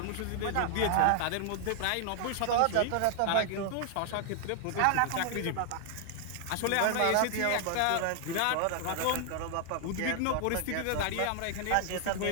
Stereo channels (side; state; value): both; different; correlation 0.00